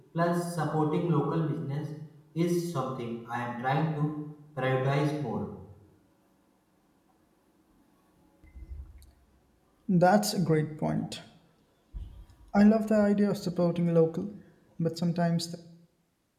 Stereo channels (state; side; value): identical; both; correlation 1.00